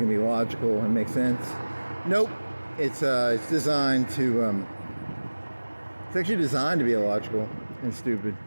to be logical and make sense. Nope, it's designed to. It's actually designed to be illogical and stupid.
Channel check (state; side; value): inverted; both; correlation -1.00